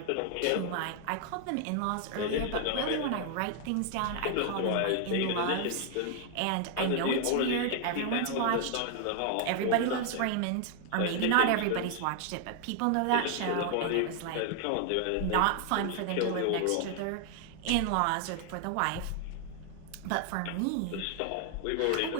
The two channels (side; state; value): both; different; correlation 0.00